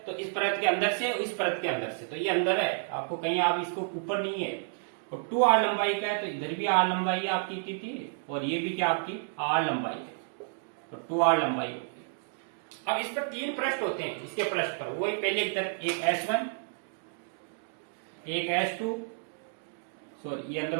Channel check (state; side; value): silent; left; digital silence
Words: तो इस परत के अंदर से, इस परत के अंदर से, तो ये अंदर है, आपको कहीं आप इसको ऊपर नहीं है। और 2r लंबाई का है तो इधर भी r लंबाई है आपकी थी, और ये भी क्या आपकी r लंबाई है, तो 2r लंबाई होती है। अब इस पर 3 पृष्ठ होते हैं, इसके पृष्ठ पर वो पहले इधर एक S1, एक S2, सॉरी ये अंदर